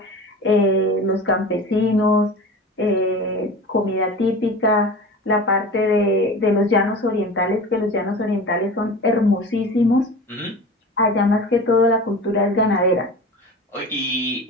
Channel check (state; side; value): normal; both; correlation 0.34